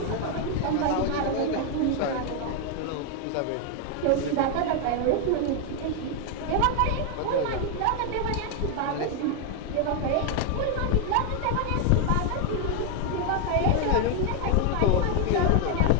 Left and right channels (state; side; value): different; both; correlation 0.01